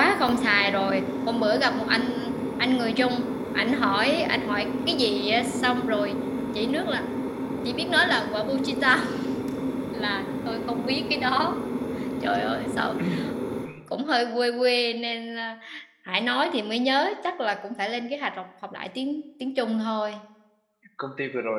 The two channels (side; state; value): both; identical; correlation 1.00